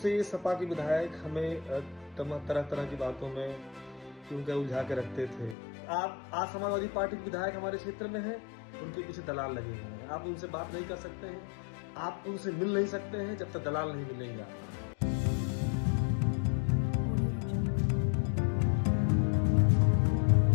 सपा के विधायक हमें तरह तरह की बातों में क्योंकि उलझा के रखते थे। आप आज समाजवादी पार्टी के विधायक हमारे क्षेत्र में हैं, उनके पीछे दलाल लगे हुए हैं। आप उनसे बात नहीं कर सकते हैं, आप उनसे मिल नहीं सकते हैं जब तक दलाल नहीं मिलेंगे आपको।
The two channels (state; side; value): drops out; right; at 5.6 s